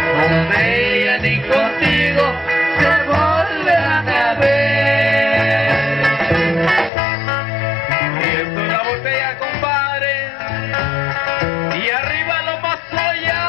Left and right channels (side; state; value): right; drops out; at 6.9 s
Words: ella ni contigo se volverán a ver. Y esto es la botella, compadre, y arriba lo pasó allá.